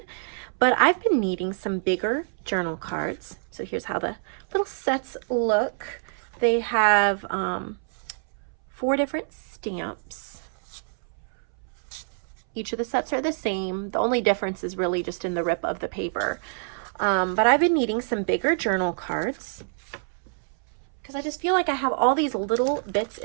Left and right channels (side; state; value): left; silent; 61 dB below the other